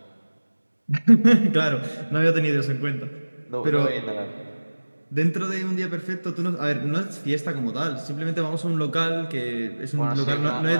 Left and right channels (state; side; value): inverted; both; correlation -1.00